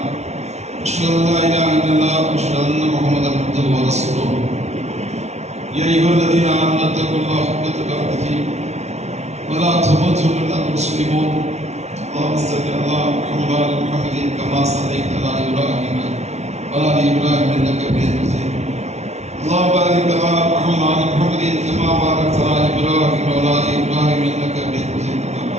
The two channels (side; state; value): left; late; 0.32 ms